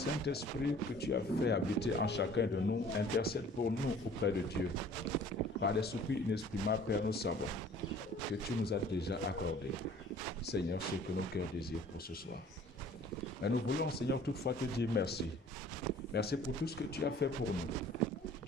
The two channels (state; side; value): normal; both; correlation 0.51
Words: que tu as fait habiter en chacun de nous intercède pour nous auprès de Dieu. Par des soupirs inexprimables, Père, nous savons que tu nous as déjà accordé, Seigneur, ce que nos cœurs désirent pour ce soir. Mais nous voulons, Seigneur, toutefois te dire merci. Merci pour tout ce que tu as fait pour nous